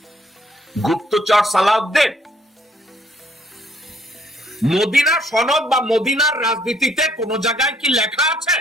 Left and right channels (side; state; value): both; normal; correlation 0.66